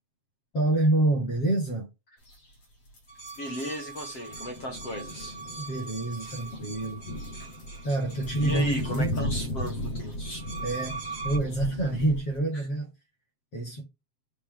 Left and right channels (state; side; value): late; right; 7.5 ms